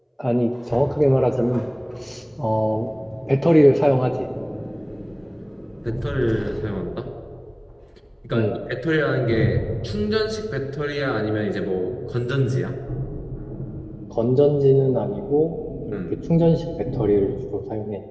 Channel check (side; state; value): both; identical; correlation 1.00